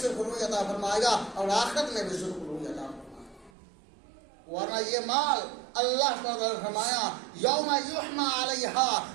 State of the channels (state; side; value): drops out; left; at 3.5 s